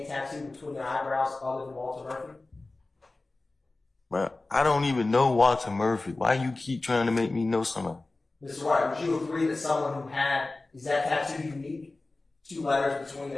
tattoo between their eyebrows other than Walter Murphy? Well, I don't even know Walter Murphy. Why you keep trying to make me know somebody? Mr. White, would you agree that someone who is that tattoo unique? 2 letters between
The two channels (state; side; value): quieter; right; 3.2 dB